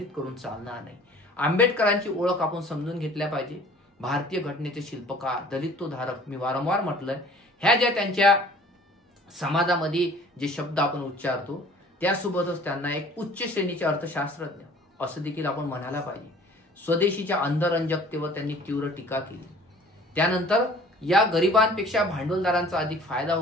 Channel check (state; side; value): normal; both; correlation 0.50